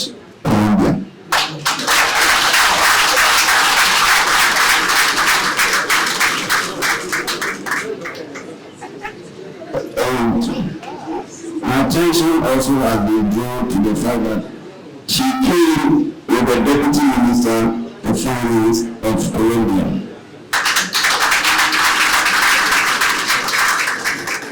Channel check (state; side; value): identical; both; correlation 1.00